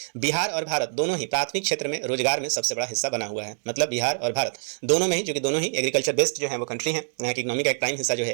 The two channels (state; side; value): silent; left; digital silence